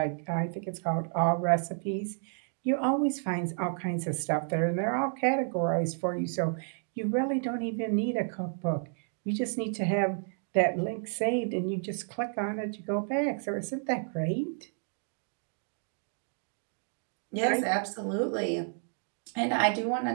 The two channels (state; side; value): silent; left; 57 dB below the other